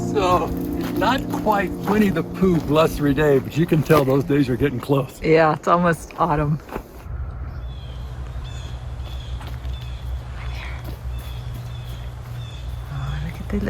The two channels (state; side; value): identical; both; correlation 1.00